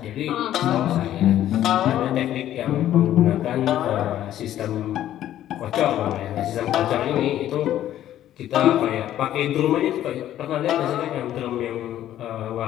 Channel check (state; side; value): quieter; right; 12.2 dB